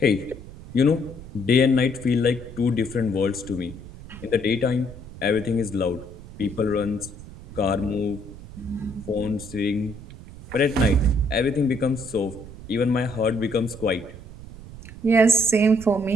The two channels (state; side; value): noise; right; rumble, 15 dB below the sound